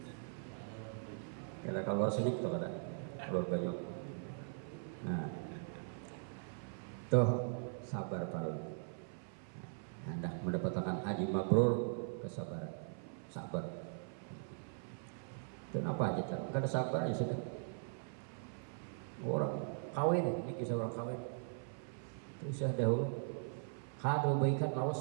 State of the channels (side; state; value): left; silent; 51 dB below the other